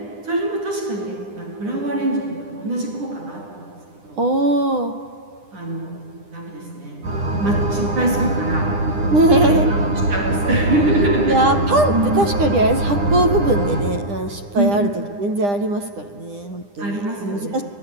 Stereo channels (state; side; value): late; left; 9.9 ms